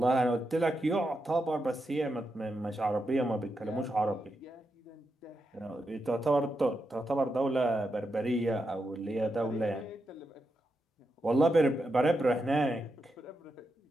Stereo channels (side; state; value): both; normal; correlation 0.86